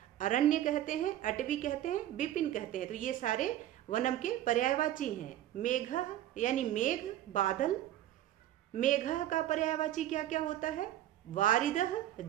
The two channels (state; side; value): quieter; left; 13.0 dB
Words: अरण्य कहते हैं, अटवी कहते हैं, विपिन कहते हैं, तो ये सारे वनम के पर्यायवाची हैं। मेघ यानी मेघ, बादल, मेघ का पर्यायवाची क्या क्या होता है? वारिदः,